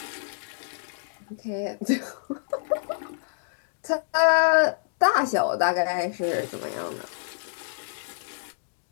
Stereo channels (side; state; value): right; silent; digital silence